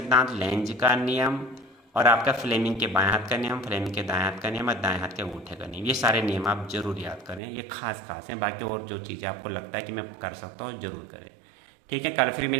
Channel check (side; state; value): left; drops out; at 7.4 s